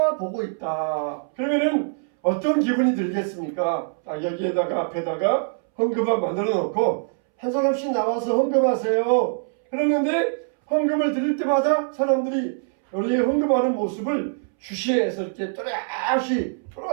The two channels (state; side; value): silent; left; 63 dB below the other